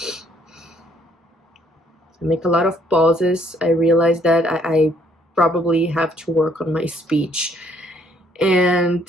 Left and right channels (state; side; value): normal; both; correlation 0.66